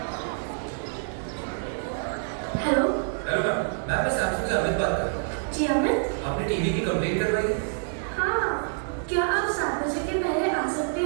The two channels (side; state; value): left; silent; digital silence